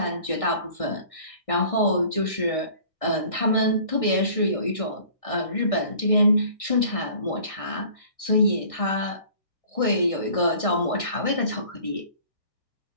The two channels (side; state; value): right; late; 1.6 ms